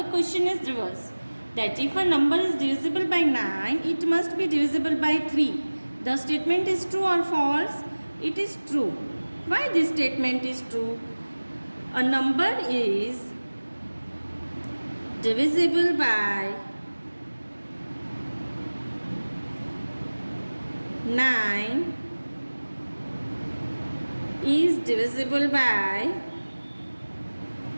question is reverse. That if a number is divisible by 9, it must be divisible by 3. The statement is true or false? It is true. Why this statement is true? A number is divisible by 9 is divisible by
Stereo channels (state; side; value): inverted; both; correlation -1.00